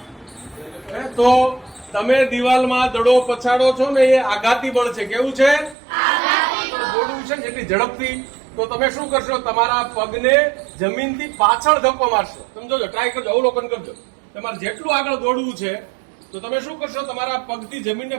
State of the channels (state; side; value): drops out; left; at 5.8 s